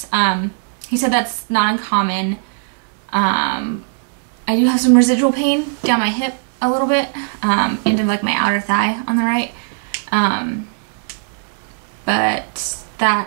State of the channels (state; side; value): silent; left; 61 dB below the other